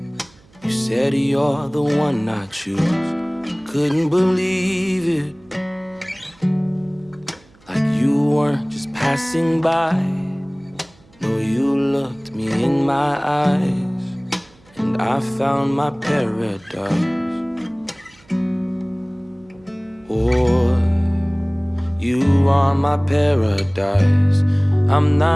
you said you're the one I choose. Couldn't believe it, like you weren't just passing by. No, you looked me in my eyes, and I found my paradise. Oh, you are my paradise. I'm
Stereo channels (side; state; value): right; noise; hum, 29 dB below the sound